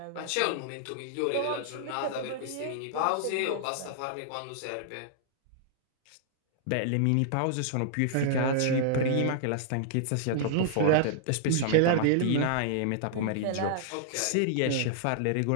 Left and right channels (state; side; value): different; both; correlation -0.01